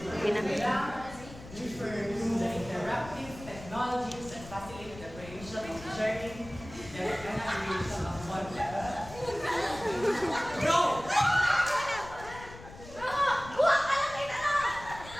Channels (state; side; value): noise; left; rumble, 16 dB below the sound